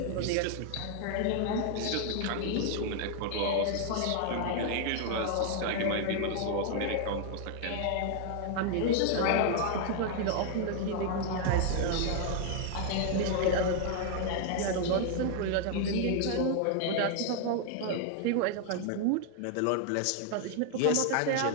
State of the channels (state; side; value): different; both; correlation 0.00